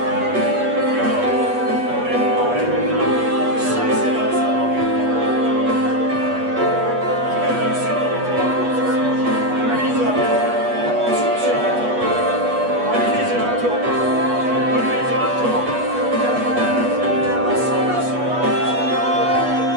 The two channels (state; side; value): late; left; 8.3 ms